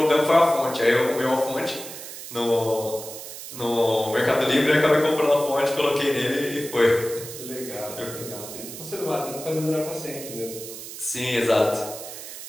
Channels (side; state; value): right; noise; hiss, 11 dB below the sound